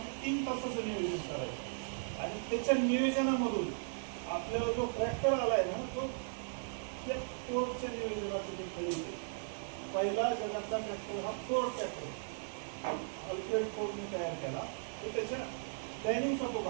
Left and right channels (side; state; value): left; silent; digital silence